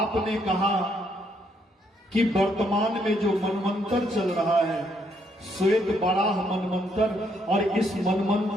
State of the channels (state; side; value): normal; both; correlation 0.72